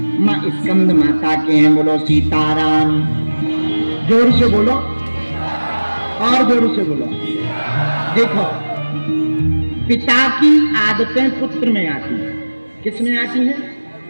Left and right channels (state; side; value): inverted; both; correlation -1.00